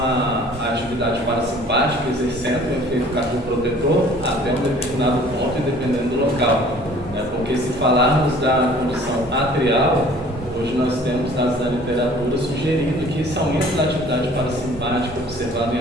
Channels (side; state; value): both; normal; correlation 0.52